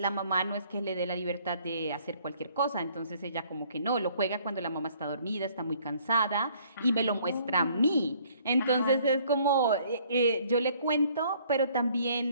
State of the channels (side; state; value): both; inverted; correlation -0.60